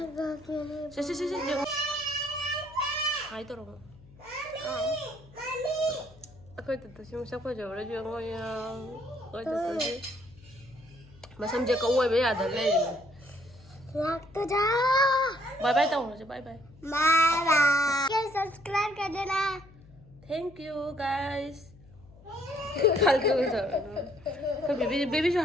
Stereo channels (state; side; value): noise; left; hum, 23 dB below the sound